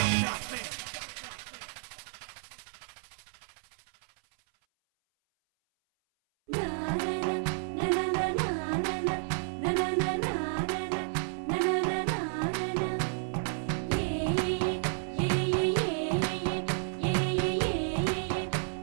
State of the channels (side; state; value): left; silent; 57 dB below the other